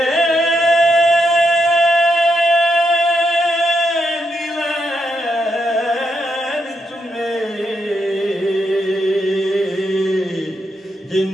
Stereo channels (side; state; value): both; normal; correlation 0.81